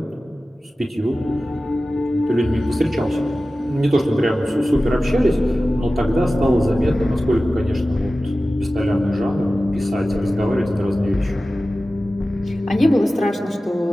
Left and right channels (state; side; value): normal; both; correlation 0.95